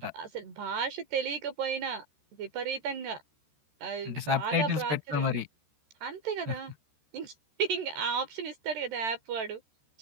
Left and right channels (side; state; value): left; late; 13 ms